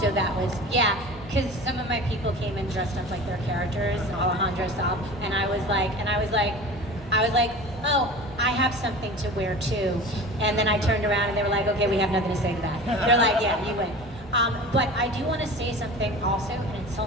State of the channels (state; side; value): normal; both; correlation 0.36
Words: that was, yeah, because some of my people came in dressed up like their characters, Alejandro Saab, and I was like, oh, I have something to wear too. And then I turned around and they were like, okay, we have nothing to say to that. They're like, yeah, you win. But I do want to say something also, and it's